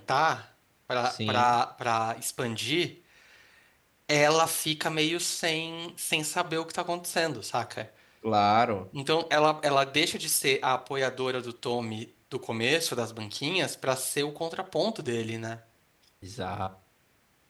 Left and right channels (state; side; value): identical; both; correlation 1.00